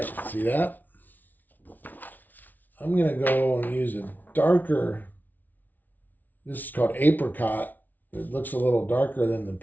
see that? I'm going to go and use a darker, this is called apricot. It looks a little darker than the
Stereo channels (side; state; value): right; late; 0.082 ms